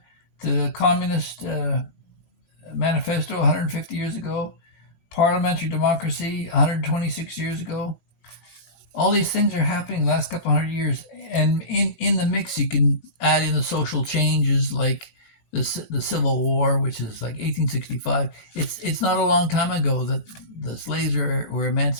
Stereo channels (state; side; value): late; right; 19 ms